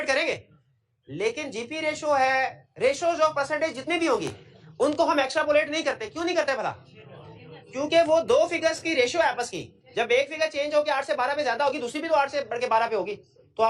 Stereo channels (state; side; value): identical; both; correlation 1.00